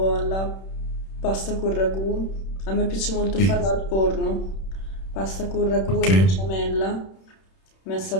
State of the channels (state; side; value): late; right; 31 ms